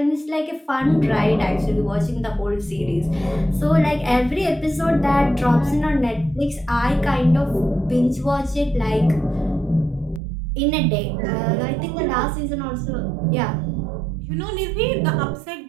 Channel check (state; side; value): drops out; left; at 10.2 s